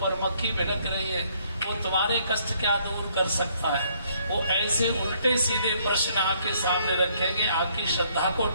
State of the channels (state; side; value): inverted; both; correlation -0.67